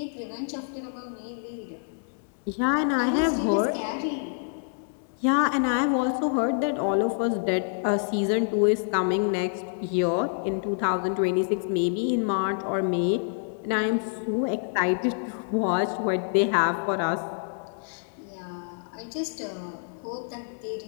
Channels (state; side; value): silent; right; digital silence